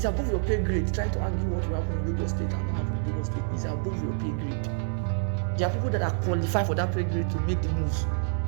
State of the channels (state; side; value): silent; left; digital silence